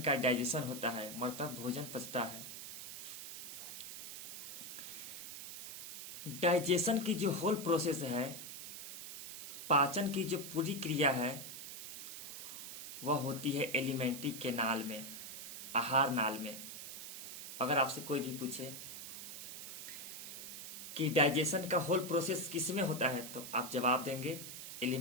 का डाइजेशन होता है, मतलब भोजन पचता है। डाइजेशन की जो होल प्रोसेस है, पाचन की जो पूरी क्रिया है, वह होती है एलिमेंट्री कैनाल में, आहार नाल में। अगर आपसे कोई भी पूछे कि डाइजेशन का होल प्रोसेस किस में होता है, तो आप जवाब देंगे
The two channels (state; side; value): noise; right; hiss, 9 dB below the sound